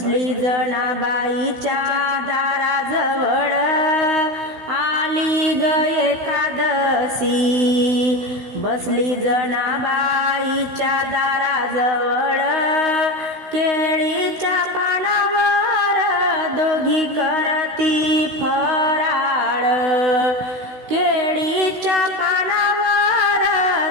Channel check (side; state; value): left; late; 16 ms